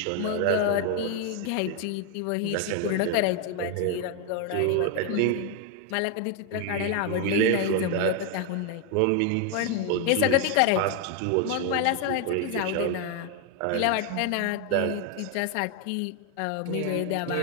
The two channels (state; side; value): different; both; correlation 0.01